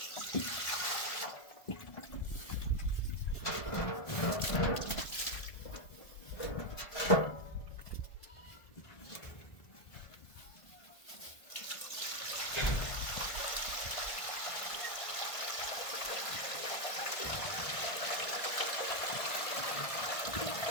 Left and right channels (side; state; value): right; late; 1.5 ms